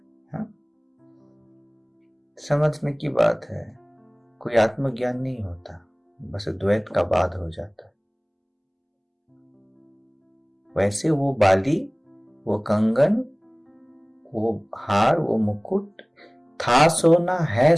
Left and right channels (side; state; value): both; identical; correlation 1.00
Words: समझने की बात है, कोई आत्मज्ञान नहीं होता, बस द्वैत का बाध हो जाता है। वैसे वो बाली, वो कंगन, वो हार, वो मुकुट था सोना, है